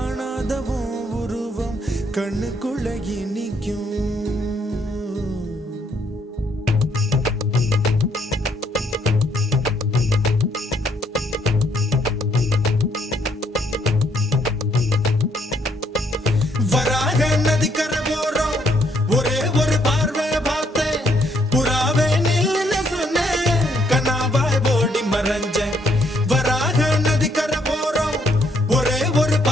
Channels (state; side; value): normal; both; correlation 0.70